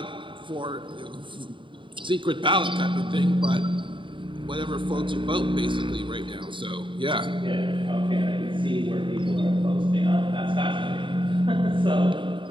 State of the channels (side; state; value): left; late; 0.24 ms